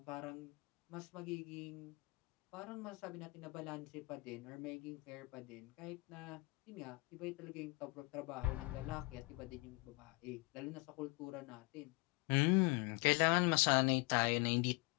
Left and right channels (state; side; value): quieter; right; 25.8 dB